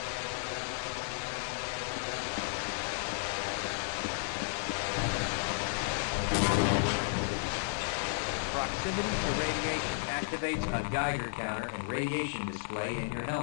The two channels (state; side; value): silent; right; 56 dB below the other